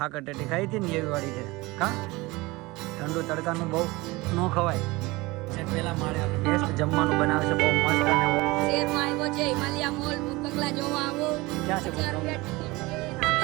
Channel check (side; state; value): left; quieter; 22.0 dB